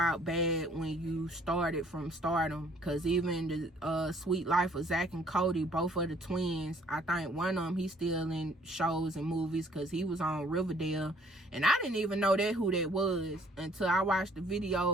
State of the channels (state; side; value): normal; both; correlation 0.60